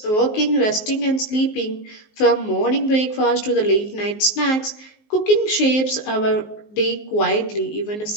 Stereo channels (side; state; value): right; late; 19 ms